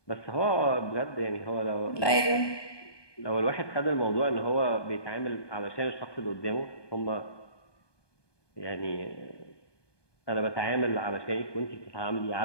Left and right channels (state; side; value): late; right; 1.2 ms